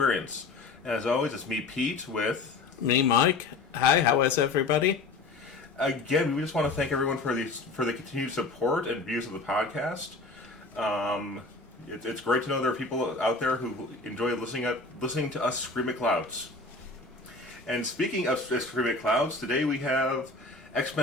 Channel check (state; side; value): quieter; right; 3.7 dB